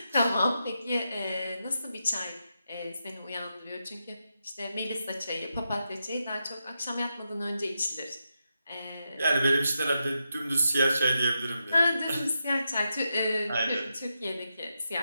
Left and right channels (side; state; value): both; inverted; correlation -0.86